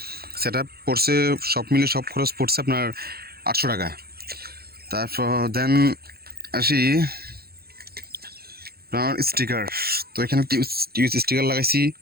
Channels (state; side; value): late; left; 0.45 ms